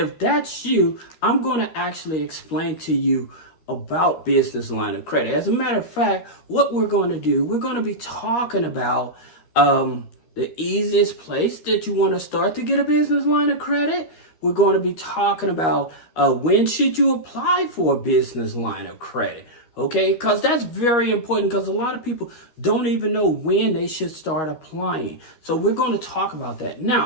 that's you, I'm going to actually explain to you about business line of credit. As a matter of fact, what we're going to do, we're going to be talking about the easiest place that you want to start to get a business line of credit. We're going to be talking about when should you apply for a business line of credit, okay? Because that's very important, because a lot of people don't even know when they should start applying. So we're going to talk about that.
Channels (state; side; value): late; right; 13 ms